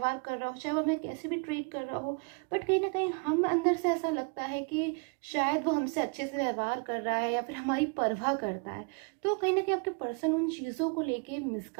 कर रहा हो, चाहे वो हमें कैसे भी ट्रीट कर रहा हो, बट कहीं ना कहीं हम अंदर से ऐसा लगता है कि शायद वो हमसे अच्छे से व्यवहार कर रहा है या फिर हमारी परवाह करता है। तो कहीं ना कहीं आपके पर्सन उन चीज़ों को लेके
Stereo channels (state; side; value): quieter; left; 35.1 dB